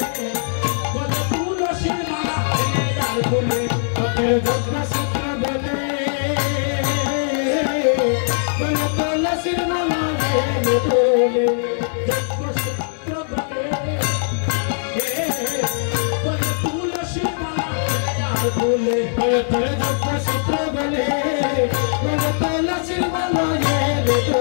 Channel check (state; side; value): silent; right; digital silence